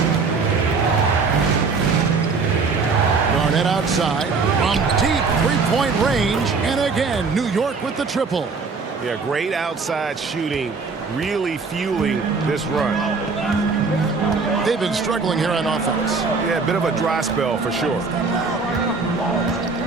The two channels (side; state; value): left; quieter; 4.6 dB